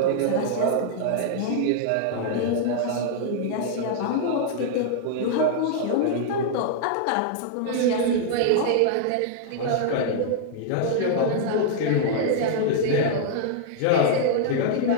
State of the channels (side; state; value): both; different; correlation -0.01